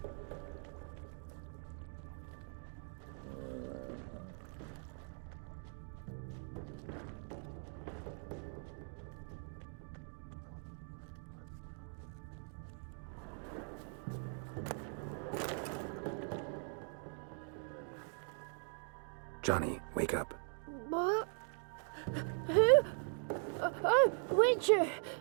Johnny, wake up. What? Who? Oh, Witcher!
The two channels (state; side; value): silent; left; 50 dB below the other